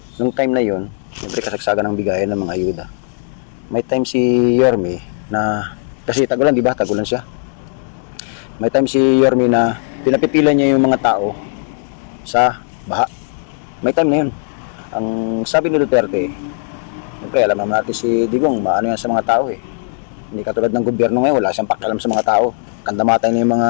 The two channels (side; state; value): right; silent; 67 dB below the other